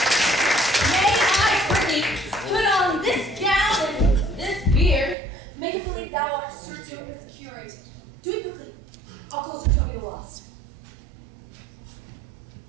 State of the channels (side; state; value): left; drops out; at 5.2 s